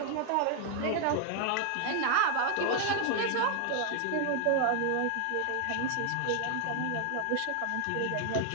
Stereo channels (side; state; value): both; different; correlation 0.00